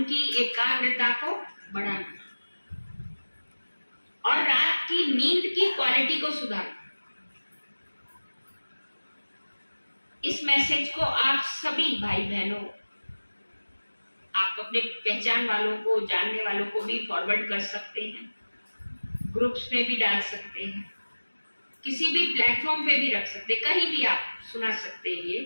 की एकाग्रता को बढ़ाना और रात की नींद की क्वालिटी को सुधारना। इस मैसेज को आप सभी भाई बहनों, आप अपने पहचान वालों को, जानने वालों को भी फॉरवर्ड कर सकते हैं, ग्रुप्स में भी डाल सकते हैं, किसी भी प्लेटफॉर्म पे भी रख सकते, कहीं भी आप सुना सकते हैं ये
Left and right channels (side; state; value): both; inverted; correlation -1.00